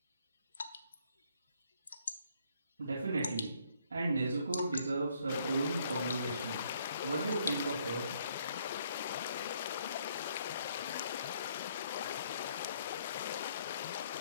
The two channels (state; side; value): inverted; both; correlation -0.68